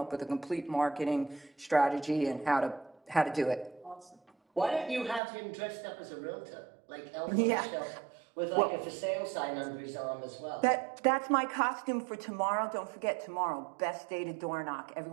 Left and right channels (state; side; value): drops out; left; at 5.2 s